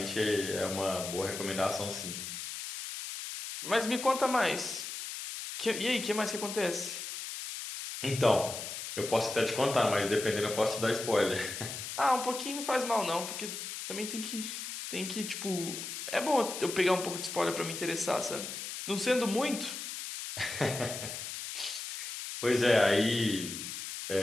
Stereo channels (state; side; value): noise; left; hiss, 7 dB below the sound